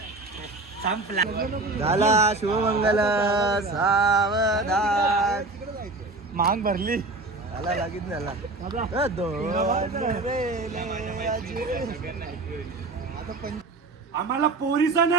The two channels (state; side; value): quieter; left; 3.1 dB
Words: संपला झाला शुभमंगल सावधान मांग भरली झाला लागीत झाला आम्हाला पोरीचा